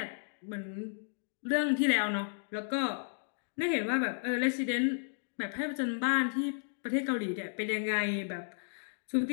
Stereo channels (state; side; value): silent; right; digital silence